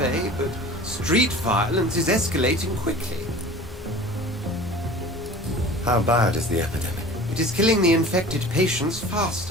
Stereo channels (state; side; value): normal; both; correlation 0.41